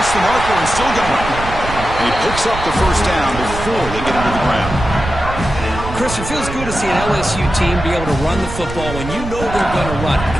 the marker and still going. And he picks up the 1st down before they get into the ground. Chris, it feels good to see an LSU team be able to run the football when you know they're going to run. I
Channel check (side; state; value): right; noise; rumble, 9 dB below the sound